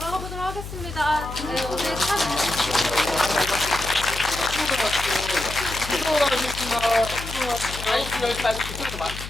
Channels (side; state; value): left; noise; hum, 10 dB below the sound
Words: 보도록 하겠습니다. 네, 오늘 참 이거 여기까지